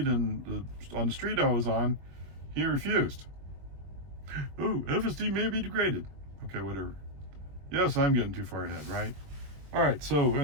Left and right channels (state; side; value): late; left; 21 ms